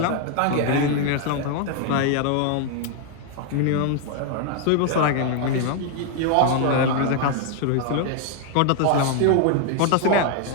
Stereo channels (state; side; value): different; both; correlation 0.00